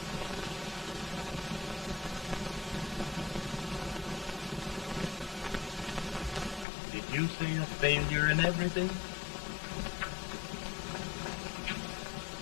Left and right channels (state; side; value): drops out; right; at 6.7 s